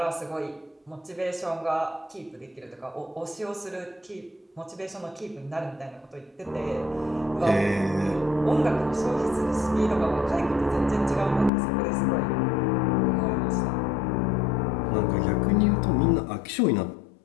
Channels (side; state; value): right; drops out; at 11.5 s